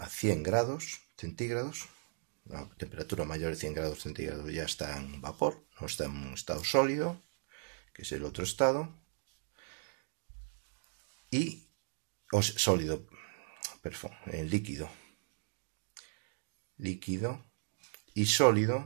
100 grados centígrados, a temperatura mayor de 100 grados centígrados ya está en vapor, no está en un estado sólido, que es el otro estado, y sólido, perdón, líquido y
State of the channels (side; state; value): left; silent; 53 dB below the other